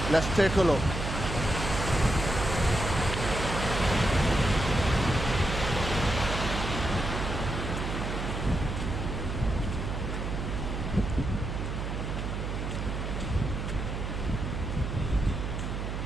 Let's take a look.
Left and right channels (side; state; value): right; noise; hum, 3 dB below the sound